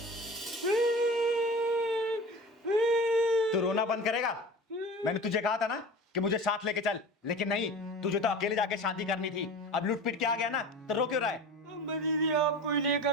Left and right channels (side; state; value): both; normal; correlation 0.35